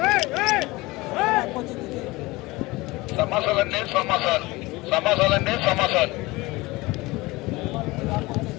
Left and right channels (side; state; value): right; quieter; 21.5 dB